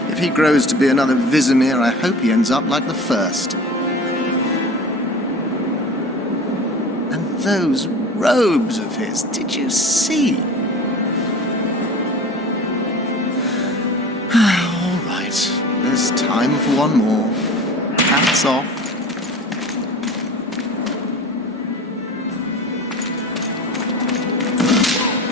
if he grows to be another Vizimir, I hope he ends up like the first. And those robes of his, did you see? All right, there's time for one more. Hats off.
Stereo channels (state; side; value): normal; both; correlation 0.38